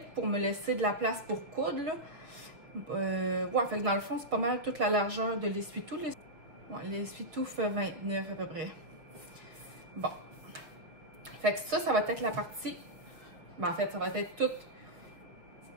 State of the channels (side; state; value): left; late; 6.5 ms